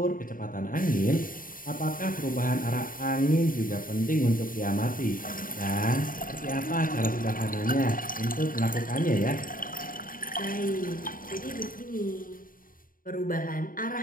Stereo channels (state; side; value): late; right; 0.40 ms